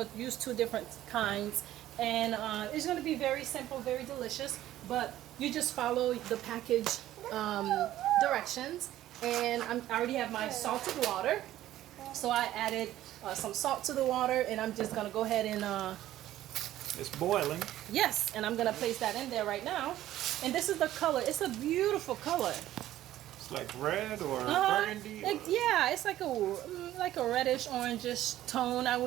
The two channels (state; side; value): quieter; left; 13.7 dB